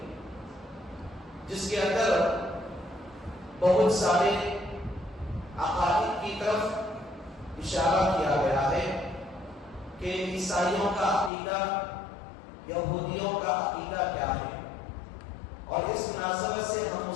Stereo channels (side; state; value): right; drops out; at 11.3 s